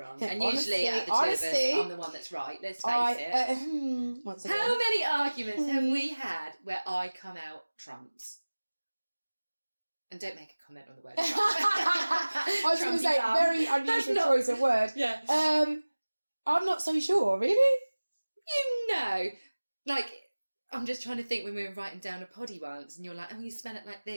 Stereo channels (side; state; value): both; inverted; correlation -1.00